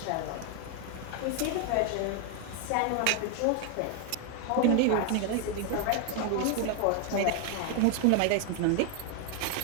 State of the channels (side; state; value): both; different; correlation 0.01